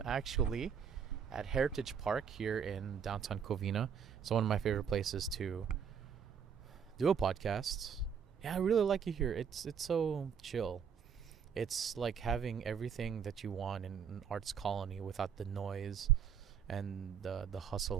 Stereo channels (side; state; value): left; quieter; 7.4 dB